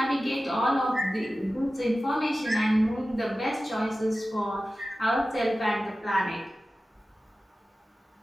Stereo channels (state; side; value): normal; both; correlation 0.95